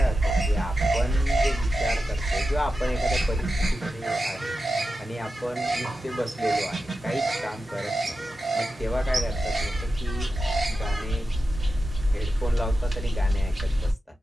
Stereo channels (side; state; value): both; normal; correlation 0.91